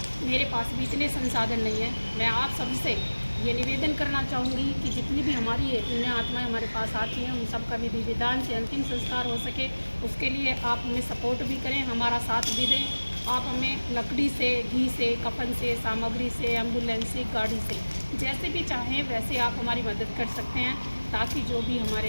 मेरे पास भी इतने संसाधन नहीं है। मैं आप सबसे ये निवेदन करना चाहूँगी कि जितनी भी हमारी ये पुण्य आत्माएँ हमारे पास आती हैं उन सब का विधि विधान से अंतिम संस्कार हो सके, उसके लिए आप हमें सपोर्ट भी करें, हमारा साथ भी दें। आप हमें लकड़ी से, घी से, कफन से, सामग्री से, एम्बुलेंस से, गाड़ी से, जैसे भी चाहें वैसे आप हमारी मदद कर सकते हैं, ताकि जो भी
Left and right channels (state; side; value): inverted; both; correlation -1.00